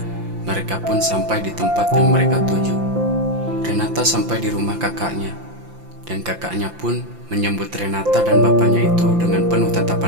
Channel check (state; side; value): late; left; 5.8 ms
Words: mereka pun sampai di tempat yang mereka tuju. Renata sampai di rumah kakaknya, dan kakaknya pun menyambut Renata dan bapaknya itu dengan penuh